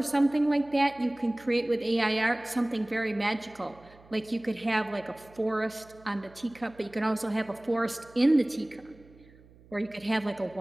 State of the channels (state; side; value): noise; right; hum, 25 dB below the sound